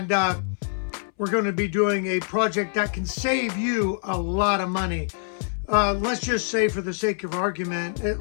we're going to be doing a project that can save you a lot of money. Let's just say, for the sake of argument,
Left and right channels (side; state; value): right; silent; 62 dB below the other